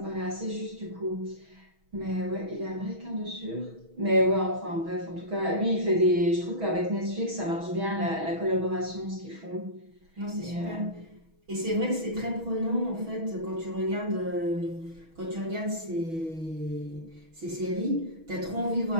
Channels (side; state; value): left; late; 6.2 ms